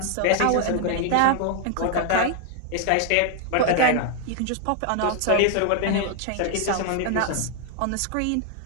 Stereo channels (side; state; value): both; different; correlation 0.00